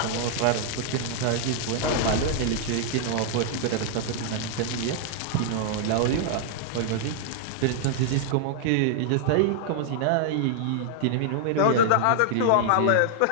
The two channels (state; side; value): different; both; correlation -0.01